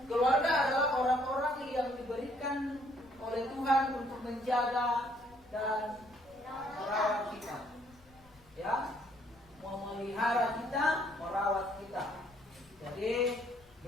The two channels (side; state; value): left; noise; rumble, 27 dB below the sound